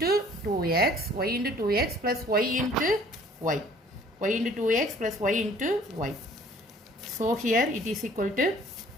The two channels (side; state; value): both; normal; correlation 0.55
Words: 2x, y into 2x plus y into y, y into 2x plus y into y. So here it is equal to